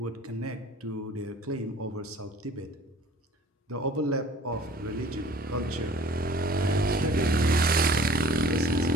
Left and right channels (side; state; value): both; normal; correlation 0.49